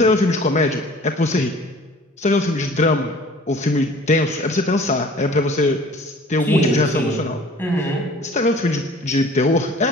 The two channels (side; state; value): both; normal; correlation 0.48